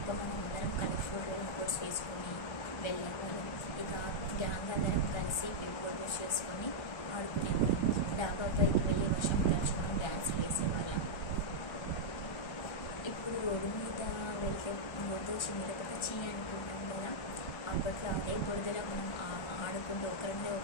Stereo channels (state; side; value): late; right; 1.3 ms